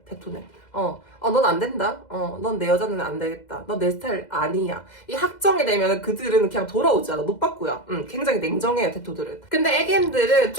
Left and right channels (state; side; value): late; right; 2.0 ms